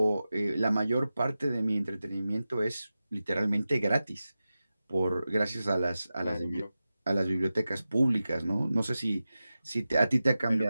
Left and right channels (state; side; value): inverted; both; correlation -0.94